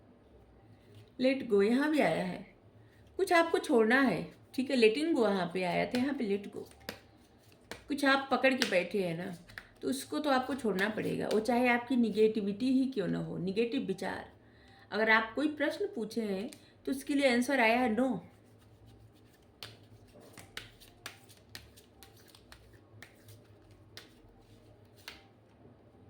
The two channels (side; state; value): both; identical; correlation 1.00